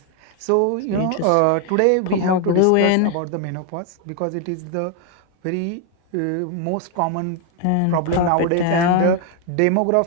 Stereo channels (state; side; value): different; both; correlation 0.01